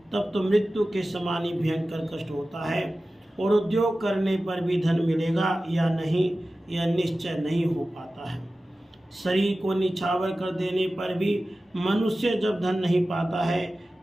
तब तो मृत्यु के समान ही भयंकर कष्ट होता है। और उद्योग करने पर भी धन मिलेगा या नहीं, यह निश्चय नहीं हो पाता है। शरीर को निछावर कर देने पर भी मनुष्य जब धन नहीं पाता है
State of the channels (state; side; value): normal; both; correlation 0.95